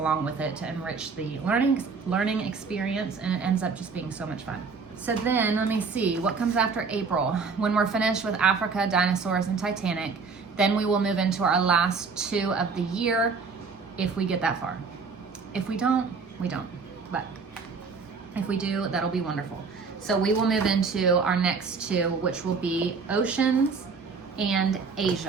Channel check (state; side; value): quieter; left; 5.0 dB